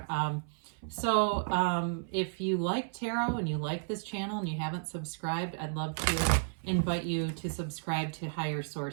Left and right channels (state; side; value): silent; left; 56 dB below the other